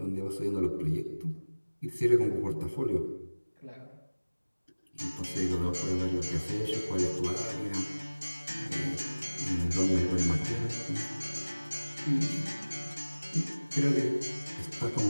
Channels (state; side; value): inverted; both; correlation -1.00